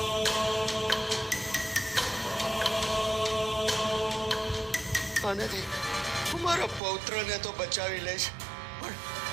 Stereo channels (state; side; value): drops out; left; at 6.8 s